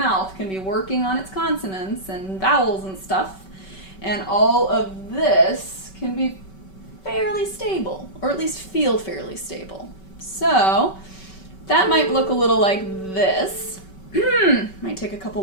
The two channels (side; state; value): right; late; 5.3 ms